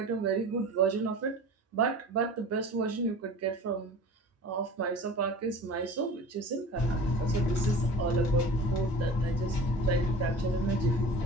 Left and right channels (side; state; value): both; normal; correlation 0.38